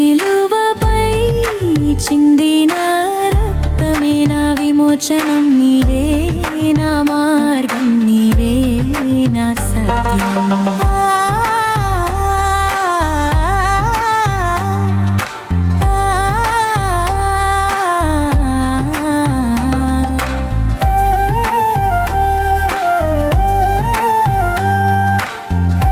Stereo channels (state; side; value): identical; both; correlation 1.00